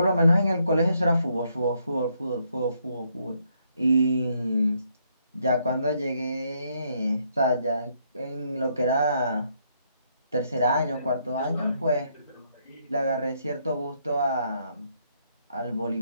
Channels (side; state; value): both; inverted; correlation -0.73